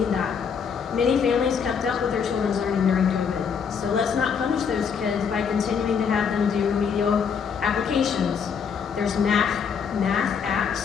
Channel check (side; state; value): right; quieter; 6.6 dB